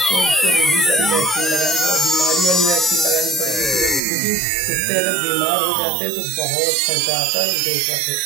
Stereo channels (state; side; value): drops out; left; at 4.0 s